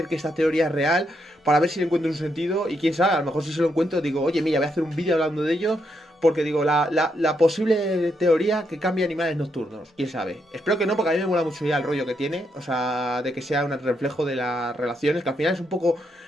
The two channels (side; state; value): both; normal; correlation 0.79